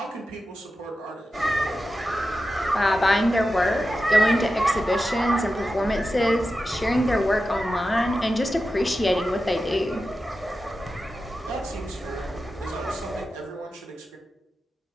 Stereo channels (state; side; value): normal; both; correlation 0.91